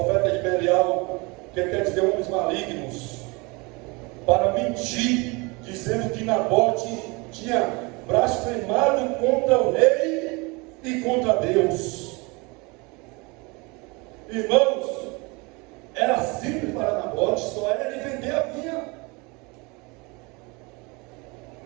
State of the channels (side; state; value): left; quieter; 27.2 dB